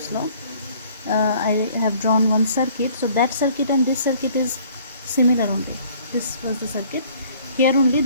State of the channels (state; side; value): inverted; both; correlation -0.56